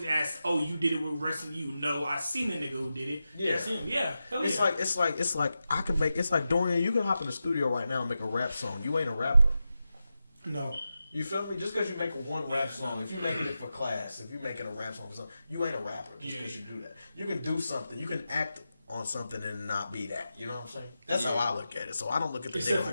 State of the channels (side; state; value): both; inverted; correlation -0.91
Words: asked, "Oh, you did it? We're arresting you." No, I seen the nigga who did it. Yeah. That's him. Yeah, hell It's yeah. like I can make, it's like Dorian, you can hop in the studio right now and make a rap song. You ain't a rapper. No. You feel me? Just because you make one rap song, if you're making it for class, if you're making a rap song for something, you ain't a rapper just because you do that. You can do something. You can act on something and not be that. You know what I'm saying? That's how I look at it. So I don't look at the nigga Except